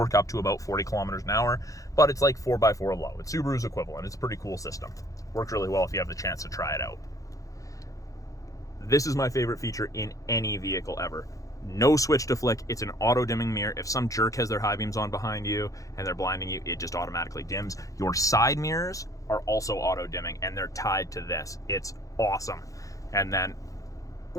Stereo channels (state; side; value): late; right; 0.16 ms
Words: up to about 40 kilometers an hour, but it's like 4x4 low. It's Subaru's equivalent. It's a pretty cool system. Works really well if you have the chance to try it out. This is my favorite feature in any vehicle ever. No switch to flick. It's an auto dimming mirror. If some jerk has their high beams on behind you and they're blinding you, it just automatically dims. Your side mirrors are also auto dimming and they're tied to this. It's awesome. And then